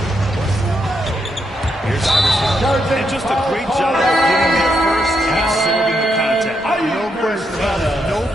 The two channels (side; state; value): both; normal; correlation 0.80